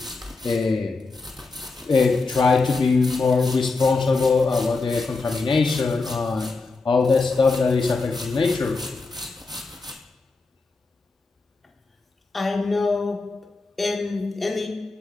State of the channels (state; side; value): quieter; right; 3.9 dB